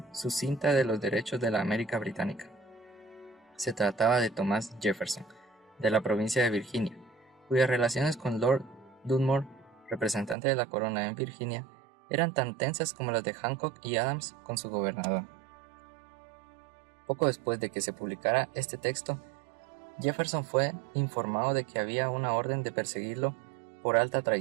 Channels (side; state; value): left; drops out; at 10.4 s